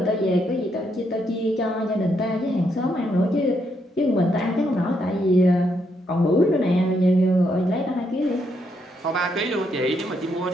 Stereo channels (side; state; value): both; normal; correlation 0.77